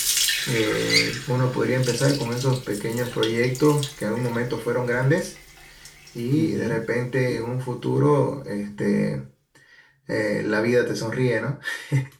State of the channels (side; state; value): both; identical; correlation 1.00